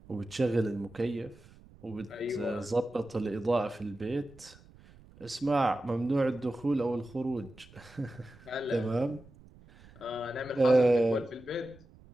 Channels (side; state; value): right; noise; rumble, 24 dB below the sound